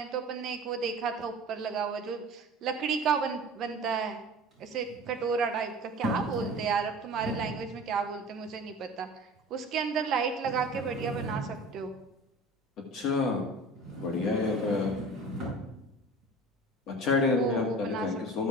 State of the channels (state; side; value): normal; both; correlation 0.39